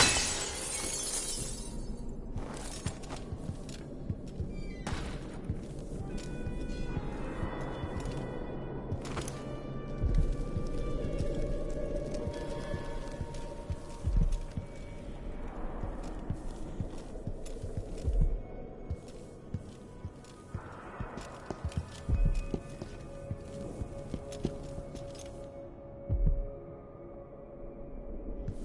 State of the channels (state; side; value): identical; both; correlation 1.00